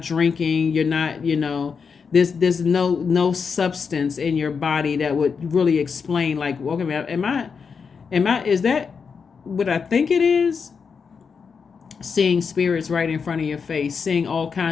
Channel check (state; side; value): quieter; right; 5.8 dB